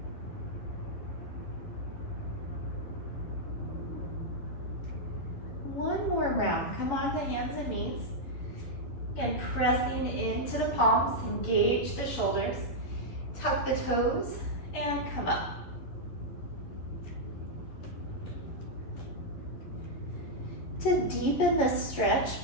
One more round. Come on to hands and knees and pressing into the palms, engage the shoulders, tuck the toes, and come up. To deepen the stretch,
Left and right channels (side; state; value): right; late; 11 ms